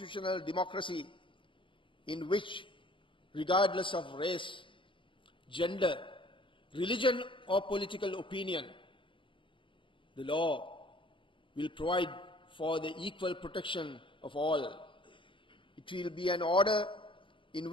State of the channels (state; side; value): late; right; 0.25 ms